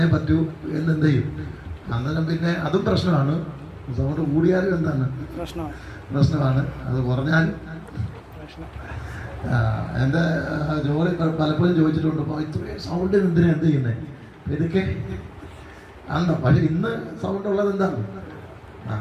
പറ്റൂ എന്നെന്ത് ചെയ്യും. അന്നേരം പിന്നെ അതും പ്രശ്നമാണ്. സൗണ്ട് കൂടിയാലും എന്താണ് പ്രശ്നമാണ്, അത് കുറഞ്ഞാലും. എൻ്റെ ജോലി പലപ്പോഴും ചോദിച്ചിട്ടുണ്ട്, അപ്പോൾ ഇത്രയും സൗണ്ടിന് എന്തിനാ എന്ത് ചെയ്യുന്നത്, ഇതൊക്കെ ആണോ. പക്ഷെ ഇന്ന് സൗണ്ട് ഉള്ളത് എന്താണ്?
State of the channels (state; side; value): identical; both; correlation 1.00